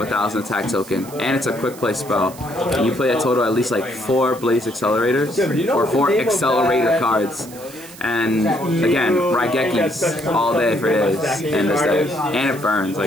attack token, and it's a quick play spell. And you play a total at least like 4 Blaze Accelerators, or 4 Accelerator cards. And again, Raigekis all day for days in this deck. And it burns,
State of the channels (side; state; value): right; noise; hiss, 18 dB below the sound